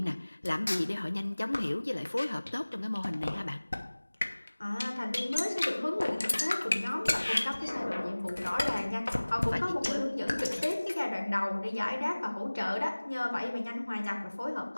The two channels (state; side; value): inverted; both; correlation -1.00